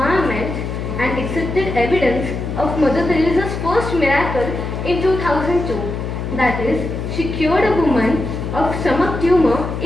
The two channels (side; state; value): left; noise; hum, 5 dB below the sound